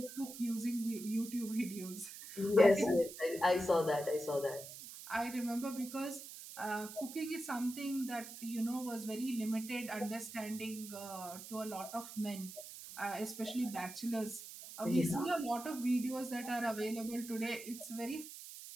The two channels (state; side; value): noise; right; hiss, 12 dB below the sound